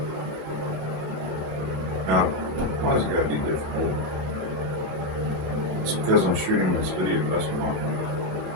Now, why does it gotta be difficult? It's because I'm shooting this video, that's why.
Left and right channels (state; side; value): late; left; 26 ms